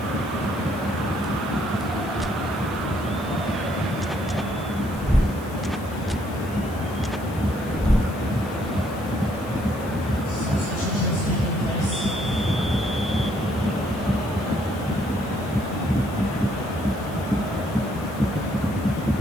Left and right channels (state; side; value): noise; left; hiss, 20 dB below the sound